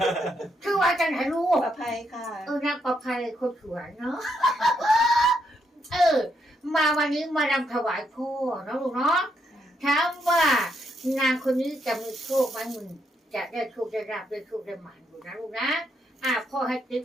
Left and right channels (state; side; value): normal; both; correlation 0.77